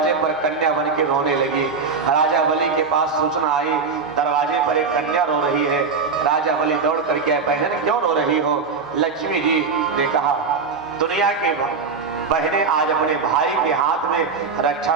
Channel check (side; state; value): left; quieter; 4.9 dB